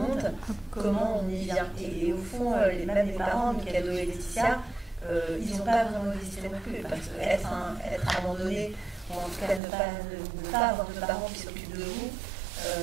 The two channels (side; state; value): left; drops out; at 9.6 s